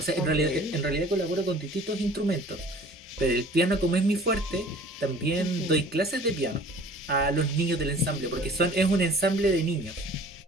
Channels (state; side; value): normal; both; correlation 0.48